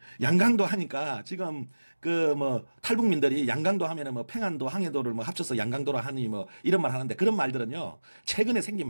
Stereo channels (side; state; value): both; inverted; correlation -1.00